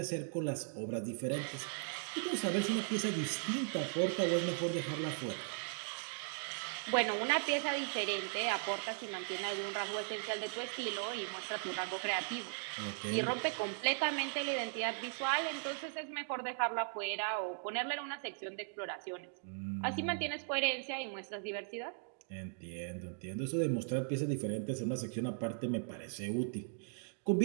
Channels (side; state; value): left; silent; digital silence